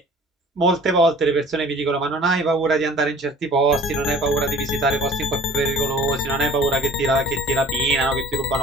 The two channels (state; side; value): normal; both; correlation 0.47